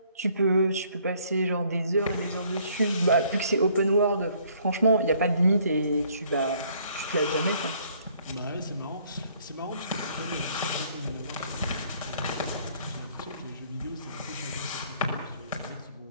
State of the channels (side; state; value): both; inverted; correlation -0.62